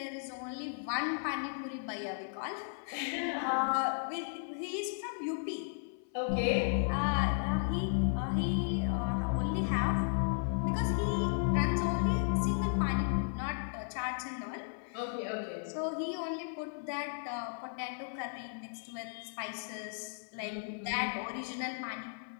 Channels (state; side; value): silent; right; 54 dB below the other